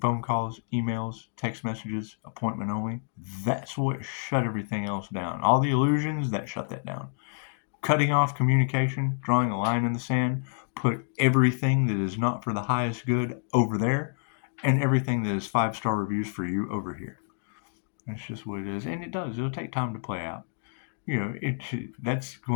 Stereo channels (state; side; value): silent; right; digital silence